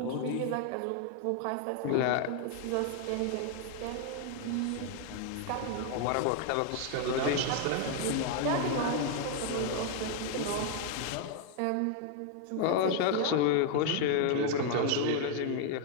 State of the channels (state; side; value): different; both; correlation 0.00